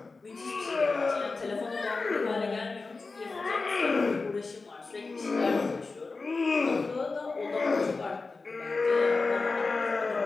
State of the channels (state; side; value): quieter; right; 3.9 dB